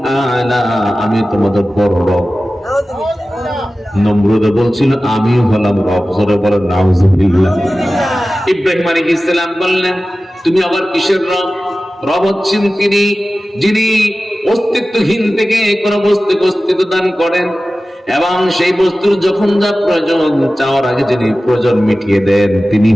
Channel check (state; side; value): normal; both; correlation 0.95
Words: আলা, আমি তোমাদের বড় রব। নমরুদ বলছিল আমিও হলাম রব। জোরে বলেন নাউজুবিল্লাহ। ইব্রাহিম আলাইহিস সালাম বললেন তুমি আবার কিসের রব? রব হচ্ছেন তিনি যিনি অস্তিত্বহীন থেকে কোন বস্তুকে অস্তিত্ব দান করেন এবং সেই বস্তুর যখন যা প্রয়োজন চাওয়ার আগে যিনি প্রয়োজন মিটিয়ে দেন তিনি